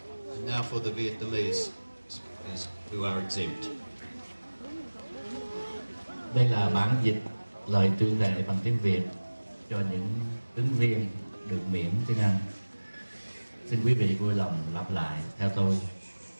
And now for the Vietnamese speakers who are exempt. Đây là bản dịch lời tuyên thệ bằng tiếng Việt cho những ứng viên được miễn tiếng Anh. Xin quý vị vui lòng lặp lại theo tôi.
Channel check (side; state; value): both; inverted; correlation -1.00